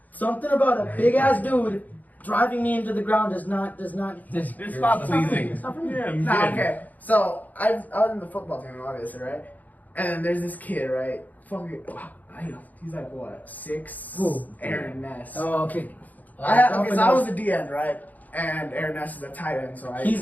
something about a big ass dude driving me into the ground does not. It's not pleasing. It's not for me. Yeah, I'm Nah, good. okay. So I was in the football team, obviously, right? And then there's this kid, right? Fucking, he's like what, 6? Who? Aaron Ness. Oh, okay. I was a D end, right? And Aaron Ness is a tight end, so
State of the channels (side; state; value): right; late; 0.080 ms